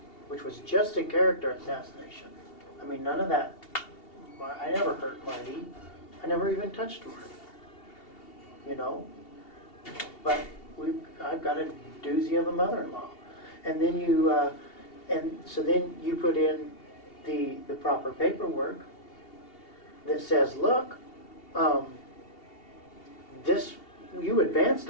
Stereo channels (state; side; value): late; right; 2.8 ms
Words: which was just a character assassination. I mean, none of that. I never hurt Marty. I never even touched Marty. But I've got a doozy of a mother-in-law, and then so then you put in the proper paperwork that says, look, you advanced